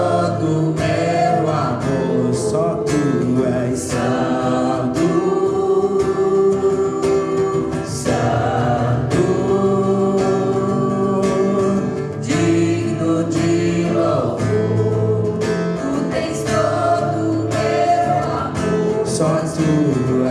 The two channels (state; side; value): identical; both; correlation 1.00